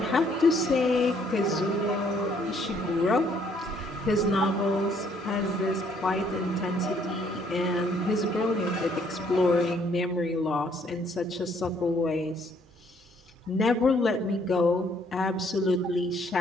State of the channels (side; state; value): both; normal; correlation 0.65